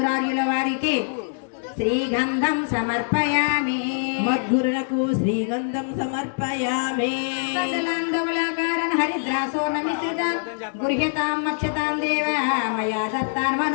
వారికి శ్రీగంధం సమర్పయామి. మద్గురులకు శ్రీగంధం సమర్పయామి. సకలాంధవళాకారణ హరిద్రాసోర్ణమిశ్రిత గృహ్యతాం మక్షతాం దేవ మయా దత్తాన్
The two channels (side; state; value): right; silent; digital silence